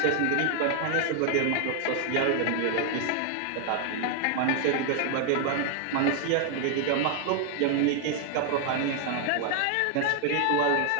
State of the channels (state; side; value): different; both; correlation 0.00